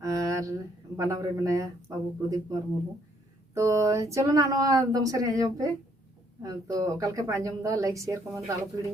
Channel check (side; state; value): both; normal; correlation 0.68